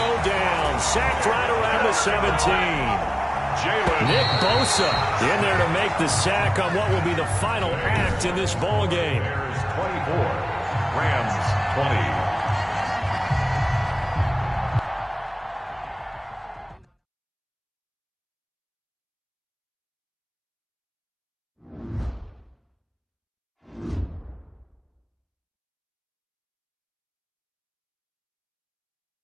down. Sacked right around the 17. Nick Bosa in there to make the sack on what will be the final act in this ball game. Bears 24, Rams 20.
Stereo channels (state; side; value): identical; both; correlation 1.00